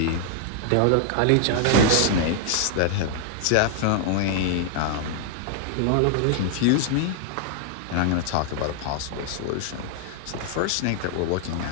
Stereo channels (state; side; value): different; both; correlation 0.00